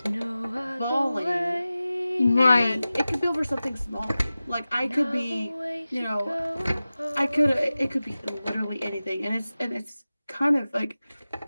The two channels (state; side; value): inverted; both; correlation -0.96